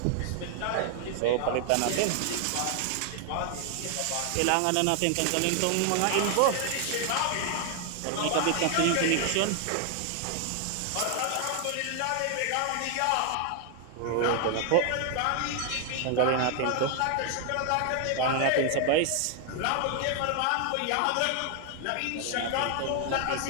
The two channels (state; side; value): different; both; correlation 0.00